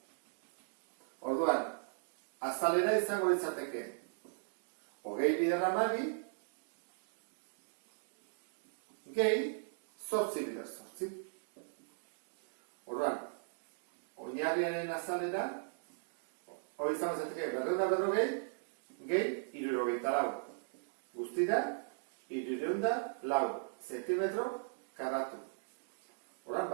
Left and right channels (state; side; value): silent; left; digital silence